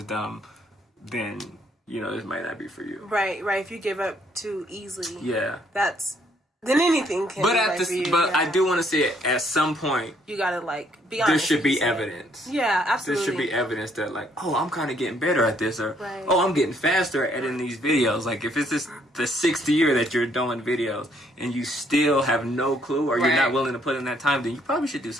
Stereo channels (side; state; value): both; normal; correlation 0.68